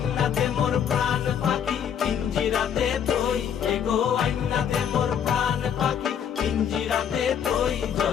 দে মোর প্রাণ পাখি পিঞ্জিরাতে তুই, এগো আইনা দে মোর প্রাণ পাখি পিঞ্জিরাতে তুই।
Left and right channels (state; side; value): quieter; right; 8.4 dB